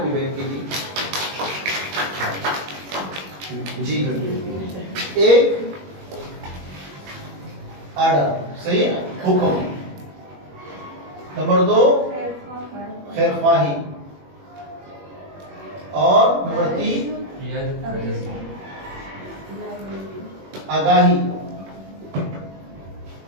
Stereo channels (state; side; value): late; left; 21 ms